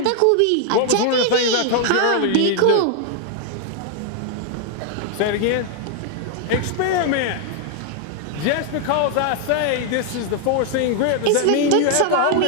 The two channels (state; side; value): different; both; correlation 0.00